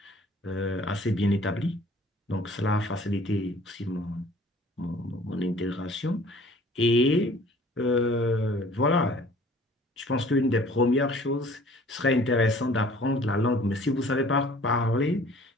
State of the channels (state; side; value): normal; both; correlation 0.52